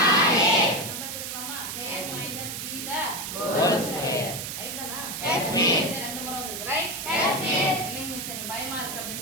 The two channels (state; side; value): noise; right; hiss, 6 dB below the sound